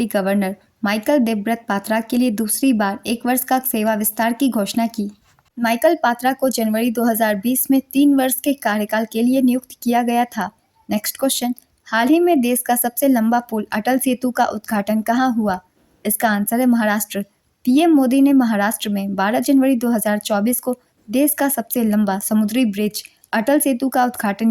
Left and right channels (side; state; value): both; identical; correlation 1.00